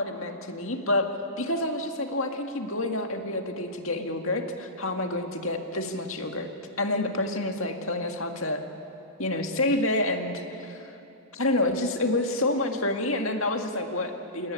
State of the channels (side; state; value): both; normal; correlation -0.20